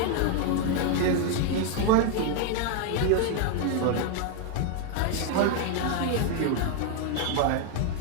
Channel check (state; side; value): different; both; correlation 0.00